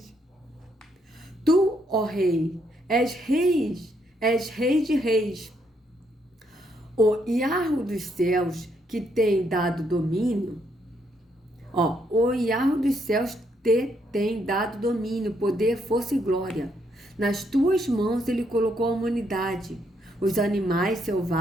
Tu, ó rei, és rei de reis. O Iarro dos céus que tem dado domínio, o Iarro dos céus te tem dado domínio, poder, força e glória. Nas tuas mãos ele colocou a humanidade, os animais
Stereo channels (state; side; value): normal; both; correlation 0.74